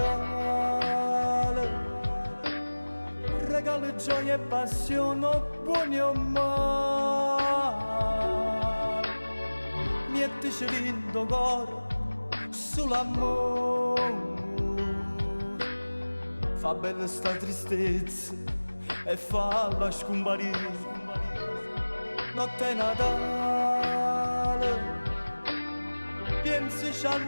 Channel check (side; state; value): both; inverted; correlation -1.00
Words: Regalo gioia e passione, buoni o male. Mettici lindo cuore sull'amore. Fa bella sta tristezza e falla scomparire. Notte Natale, pensaci